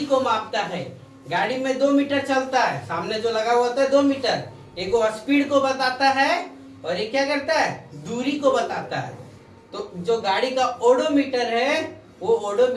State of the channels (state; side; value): identical; both; correlation 1.00